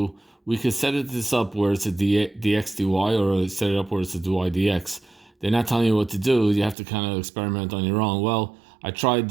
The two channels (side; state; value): left; drops out; at 6.8 s